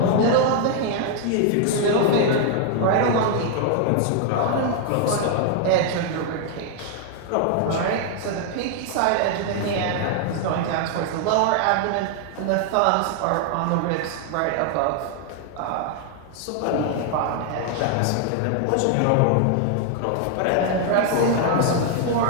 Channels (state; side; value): different; both; correlation 0.00